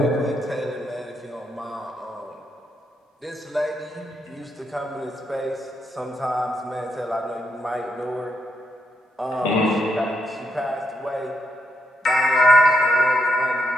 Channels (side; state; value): both; normal; correlation 0.81